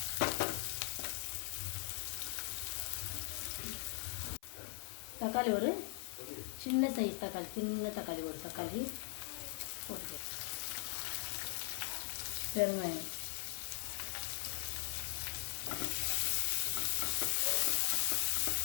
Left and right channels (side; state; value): right; silent; 51 dB below the other